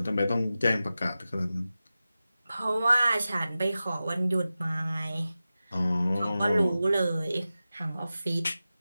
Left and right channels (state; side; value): inverted; both; correlation -0.94